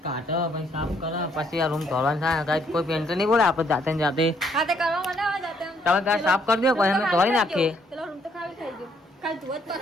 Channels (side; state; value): both; normal; correlation 0.69